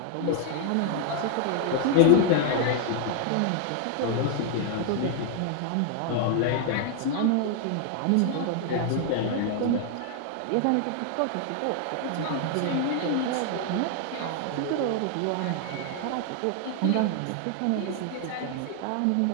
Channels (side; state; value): both; different; correlation 0.00